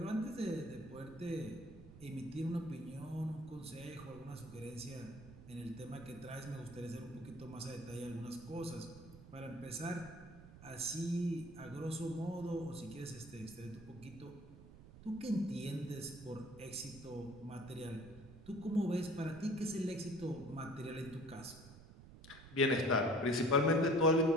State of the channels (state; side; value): noise; right; rumble, 17 dB below the sound